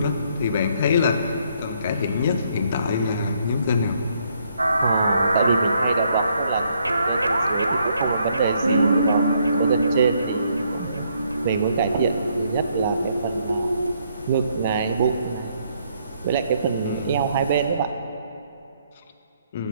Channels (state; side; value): inverted; both; correlation -0.71